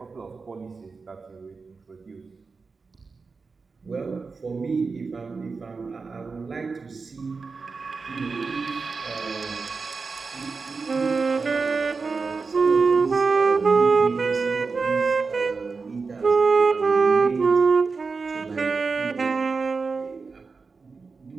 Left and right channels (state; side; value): quieter; left; 4.5 dB